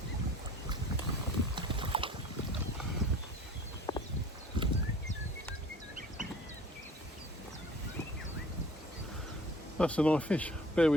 That's a nice fish. Bear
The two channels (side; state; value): both; normal; correlation 0.48